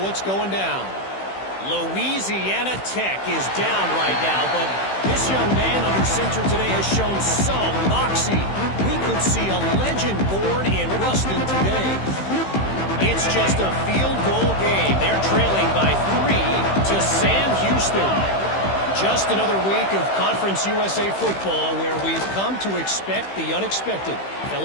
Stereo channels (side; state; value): right; late; 15 ms